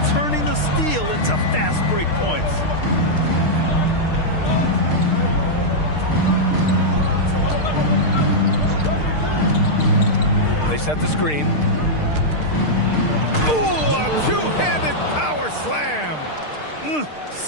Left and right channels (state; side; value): late; right; 6.6 ms